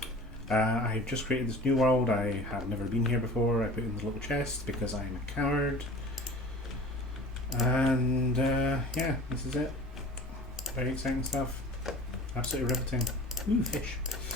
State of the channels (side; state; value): both; normal; correlation 0.42